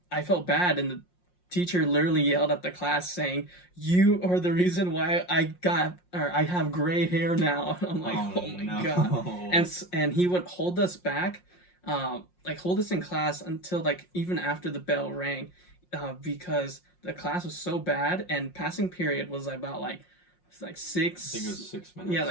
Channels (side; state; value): right; late; 5.6 ms